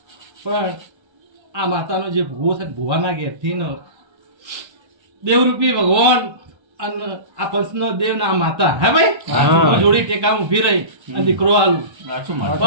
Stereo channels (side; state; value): left; late; 1.3 ms